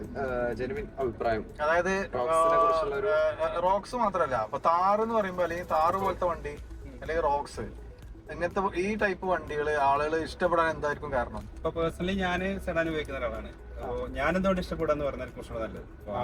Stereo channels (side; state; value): both; identical; correlation 1.00